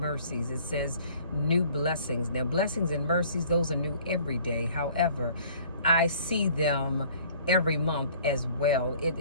It says new blessings. Now, blessings and mercies, those are new every day. However, I see them every month as well.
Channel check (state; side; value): inverted; both; correlation -0.53